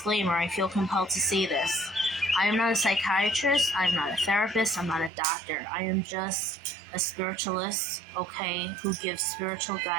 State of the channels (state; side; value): drops out; left; at 5.1 s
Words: I feel compelled to say this. I am not a psychiatrist, I'm not a therapist, I'm not a doctor. I am just a spiritualist, okay, who gives spiritual